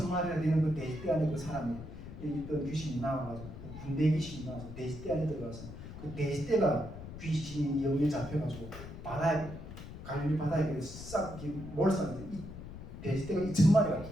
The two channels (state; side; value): noise; left; rumble, 12 dB below the sound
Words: 되는 그 돼지떼 안에 그 사람이 있던 귀신이 나와가지고 군대 귀신이 나와서 돼지떼 안에 들어가서 그 돼지떼가 귀신이 영에 잡혀가지고 갈릴리 바다에 싹 몰살해서 이 돼지떼가 2,000마리가